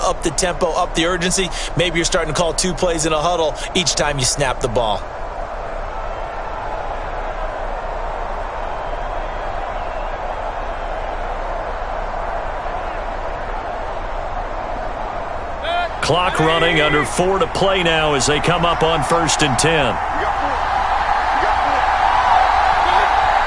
up the tempo, up the urgency. Maybe you're starting to call 2 plays in a huddle each time you snap the ball. Clock running, under 4 to play now as they come up on 1st and 10.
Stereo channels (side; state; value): both; identical; correlation 1.00